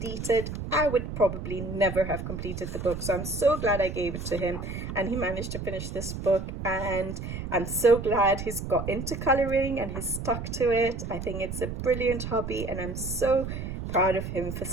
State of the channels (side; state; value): right; noise; rumble, 6 dB below the sound